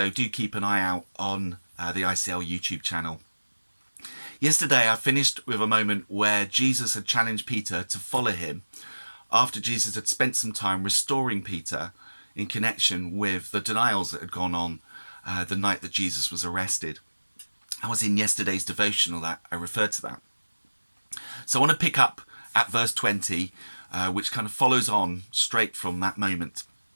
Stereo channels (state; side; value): inverted; both; correlation -1.00